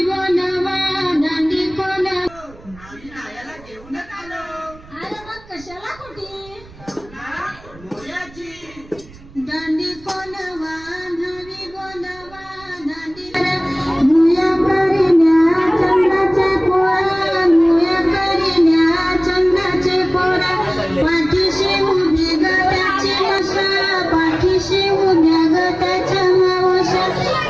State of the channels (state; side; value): noise; right; rumble, 22 dB below the sound